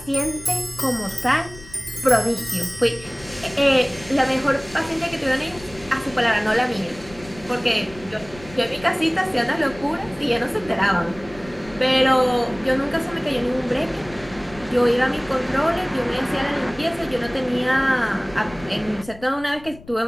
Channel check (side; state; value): left; noise; rumble, 19 dB below the sound